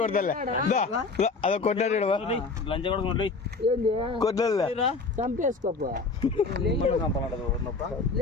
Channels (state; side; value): quieter; right; 4.1 dB